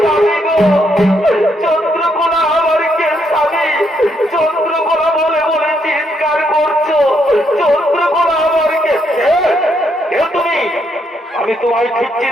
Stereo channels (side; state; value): both; normal; correlation 0.75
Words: স্বামী গো, চন্দ্রকলা আমার কে স্বামী? চন্দ্রকলা বলে বলে চিৎকার করছো, চন্দ্রকলা আমার কে? কে তুমি? আমি তোমায় ঠিক